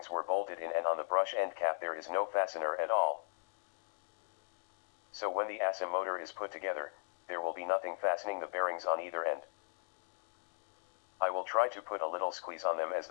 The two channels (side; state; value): right; silent; digital silence